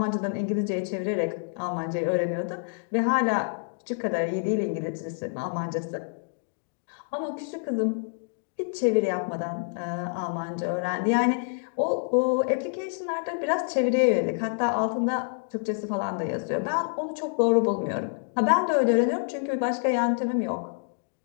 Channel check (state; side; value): silent; right; digital silence